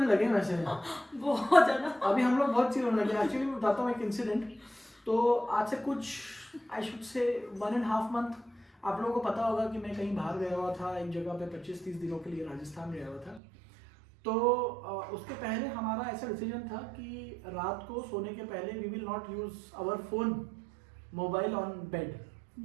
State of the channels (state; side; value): drops out; left; at 13.4 s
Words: लगे वैसे. बहुत ज्यादा. अभी हम लोग बहुत चिल होने लगे. एक्चुअली मैं बताता हूँ एक इंसिडेंट. तो आज से कुछ, आई शुड से 1.5 मंथ, आप लोगों को पता होगा कि मैं कहीं बाहर गया हुआ था, एक जगह पे 25-30 दिनों के लिए राजस्थान गया हुआ था. तो उसके पहले हमारा ऐसा डिसीजन था कि रात को सोने के पहले we will not use our phone, mobile on bed.